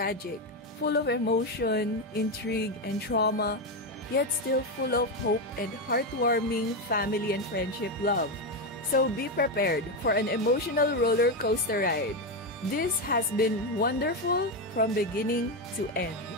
full of emotion, intrigue, and trauma, yet still full of hope and heartwarming family and friendship love. So be prepared for an emotional roller coaster ride. This has been wonderful from beginning to end.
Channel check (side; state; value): both; normal; correlation 0.10